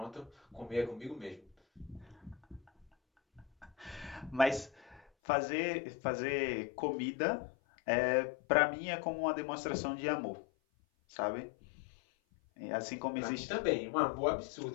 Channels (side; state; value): right; drops out; at 5.0 s